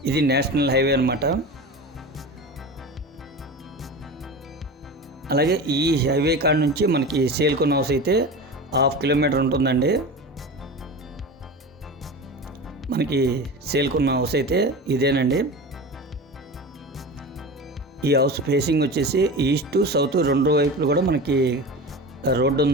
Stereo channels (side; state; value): both; normal; correlation 0.30